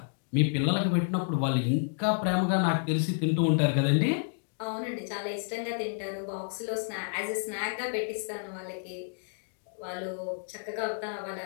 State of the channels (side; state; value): right; silent; digital silence